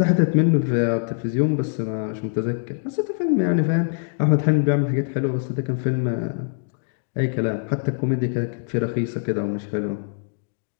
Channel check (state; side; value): silent; right; digital silence